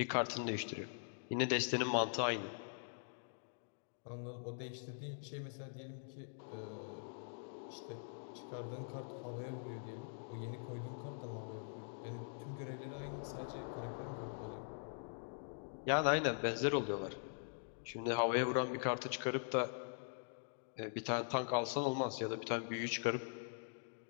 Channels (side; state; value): right; silent; digital silence